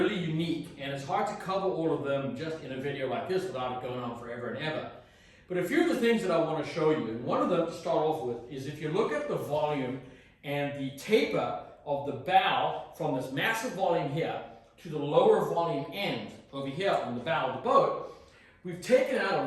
unique, and it's hard to cover all of them just in a video like this without it going on forever and ever. But a few of the things that I want to show you, and one of them to start off with, is if you look at the volume and the taper of the bow from this massive volume here to the lower volume end over here on the bow of the boat, we've taken out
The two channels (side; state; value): both; identical; correlation 1.00